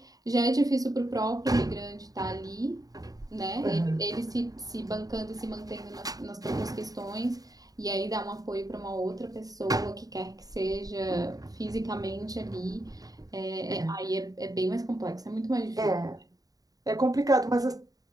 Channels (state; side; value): late; left; 0.18 ms